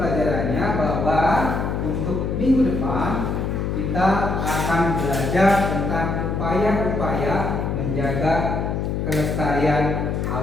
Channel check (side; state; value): left; noise; hum, 1 dB below the sound